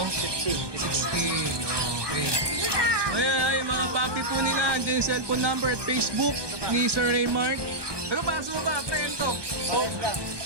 15. 16. Okay. Ay, mga papi po nila. Andiyan yung cellphone number at Facebook ni Sir Raymart. Ano pa? Sumo ba? Prento. Pares lang.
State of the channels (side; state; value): left; late; 1.2 ms